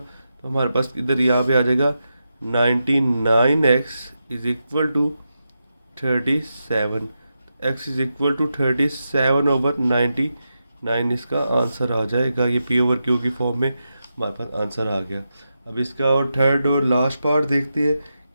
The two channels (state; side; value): inverted; both; correlation -0.88